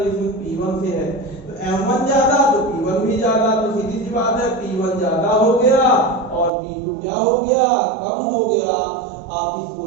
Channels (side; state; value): left; drops out; at 6.5 s